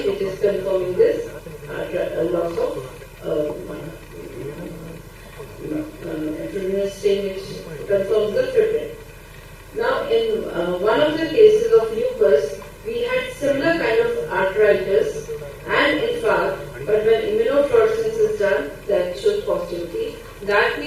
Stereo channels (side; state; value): both; identical; correlation 1.00